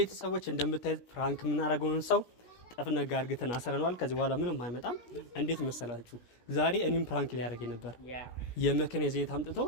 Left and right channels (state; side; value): late; right; 17 ms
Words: እንደምታዩት ፍራንክ የምናደርገውን ሰው ጠፍነጋ አርግተን አሰረናል። ከዚህ በኋላ ምንም አይመጣም። እንዴት መሰላችሁ? ዛሬ እኔም ፍራንክ ሊያደርገኝ ነበር። የመኪና ዘይት አምጥቶ